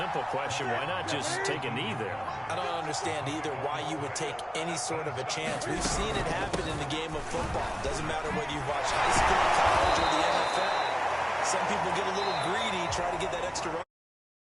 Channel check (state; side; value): identical; both; correlation 1.00